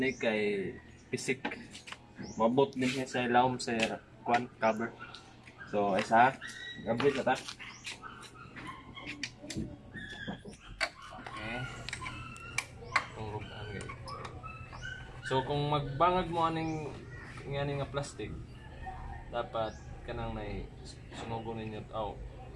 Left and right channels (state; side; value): identical; both; correlation 1.00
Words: kay pisik. Mabot din niya sa ilawom sa kwan cover. So isa, gamit na ta. Okay. Tungrugan guys. So kung magbangag mo aning ngani nga plastic, dapat kanang nay sunugon ninyo